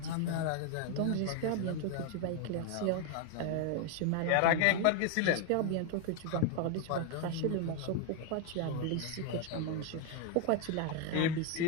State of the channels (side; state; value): both; different; correlation 0.01